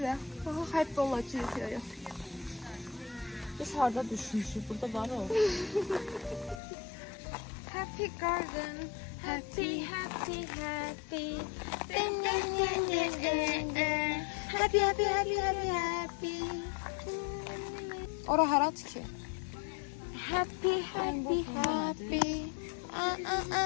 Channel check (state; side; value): drops out; right; at 6.6 s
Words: Happy olacak ya. Biz harda düşmüşük. Burada var o. Happy Garden. Happy, happy, happy. Happy, happy, happy, happy, happy. Ora harat ki. Happy, happy, happy.